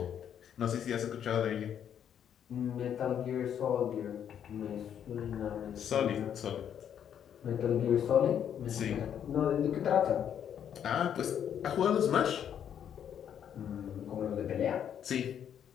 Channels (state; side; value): quieter; right; 9.1 dB